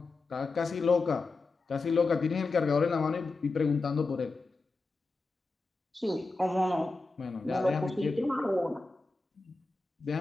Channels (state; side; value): quieter; right; 3.6 dB